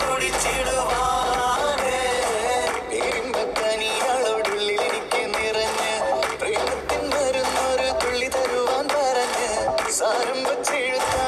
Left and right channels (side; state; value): both; identical; correlation 1.00